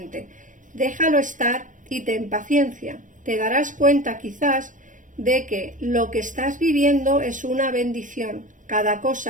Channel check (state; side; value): late; left; 0.37 ms